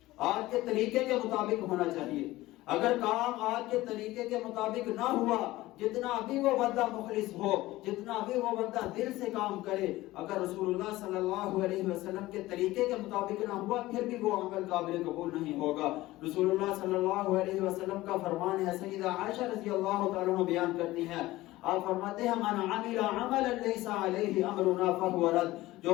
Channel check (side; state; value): right; quieter; 17.6 dB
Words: آج کے طریقے کے مطابق ہونا چاہیے۔ اگر کام آج کے طریقے کے مطابق نہ ہوا، جتنا بھی وہ بندہ مخلص ہو، جتنا بھی وہ بندہ دل سے کام کرے، اگر رسول اللہ صلی اللہ علیہ وسلم کے طریقے کے مطابق نہ ہوا، پھر بھی وہ عمل قابل قبول نہیں ہوگا۔ رسول اللہ صلی اللہ علیہ وسلم کا فرمان ہے، سیدہ عائشہ رضی اللہ تعالیٰ عنہ بیان کرتی ہیں، آپ فرماتے ہیں من عمل عملا لیس علیہ امرنا فہو رد، جو